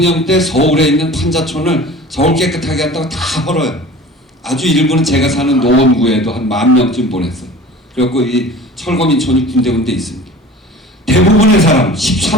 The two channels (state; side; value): normal; both; correlation 0.40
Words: 때 서울에 있는 판자촌을 서울 깨끗하게 한다고 다 헐어요. 아주 일부는 제가 사는 노원구에도 한 10,000명쯤 보냈어요. 그래갖고 이 철거민촌이 군데군데 있습니다. 대부분의 사람